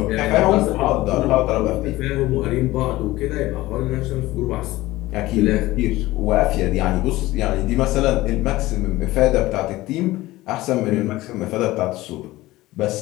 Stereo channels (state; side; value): quieter; right; 17.9 dB